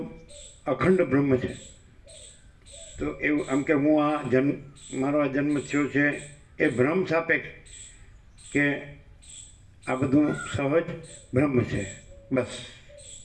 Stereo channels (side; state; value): both; identical; correlation 1.00